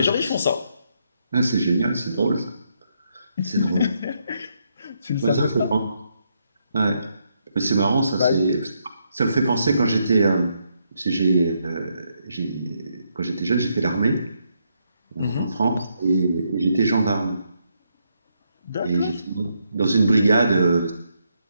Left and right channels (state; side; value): inverted; both; correlation -0.77